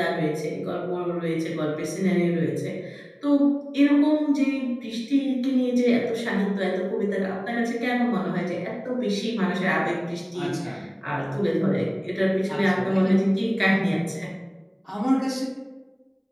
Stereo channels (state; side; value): identical; both; correlation 1.00